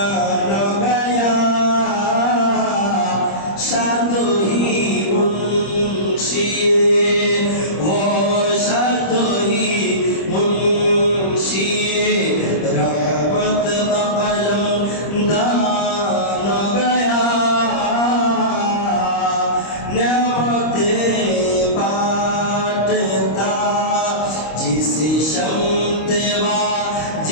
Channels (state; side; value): late; right; 26 ms